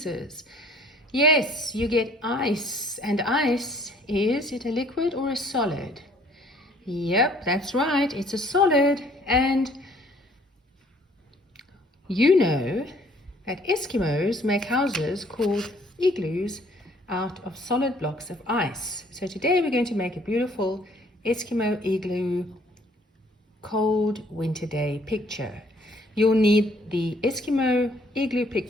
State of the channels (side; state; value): both; normal; correlation 0.59